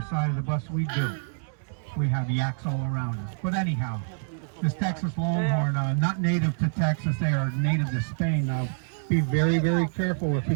side of the bus. We do. we have yaks all around us. But anyhow, this Texas longhorn, not native to Texas, they are native to Spain. Now, be very, very careful if he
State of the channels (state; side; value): silent; left; digital silence